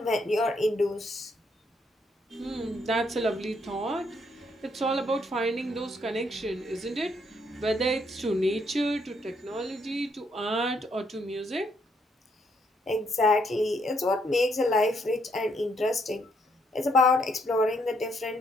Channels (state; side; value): normal; both; correlation 0.73